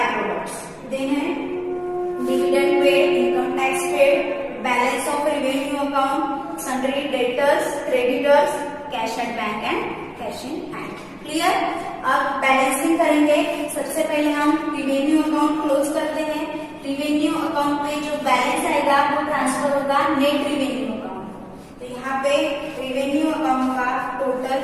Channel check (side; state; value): both; identical; correlation 1.00